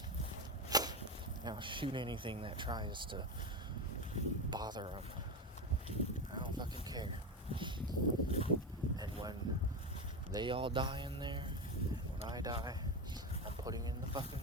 I'll shoot anything that tries to bother him. I don't fucking care. And when they all die in there, when I die, I'm putting in the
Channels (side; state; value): both; normal; correlation 0.16